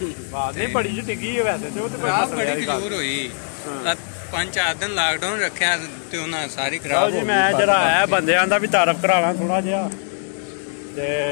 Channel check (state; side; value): silent; right; 65 dB below the other